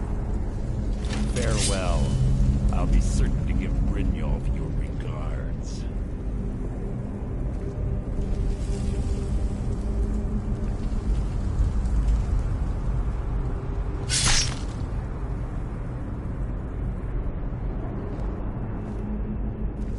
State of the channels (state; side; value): identical; both; correlation 1.00